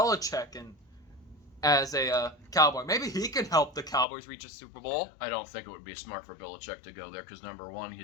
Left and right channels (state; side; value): drops out; right; at 4.0 s